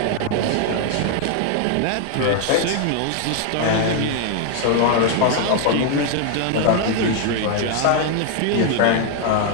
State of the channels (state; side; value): different; both; correlation 0.00